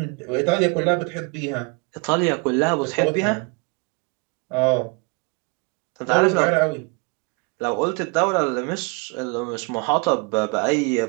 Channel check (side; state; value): left; quieter; 31.1 dB